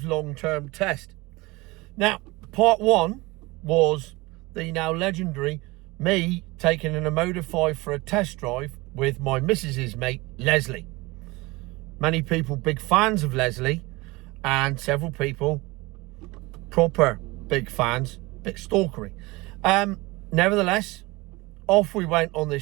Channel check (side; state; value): left; quieter; 22.7 dB